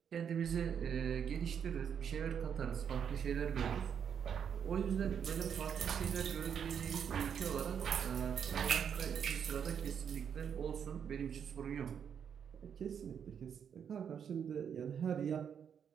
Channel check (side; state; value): left; quieter; 7.8 dB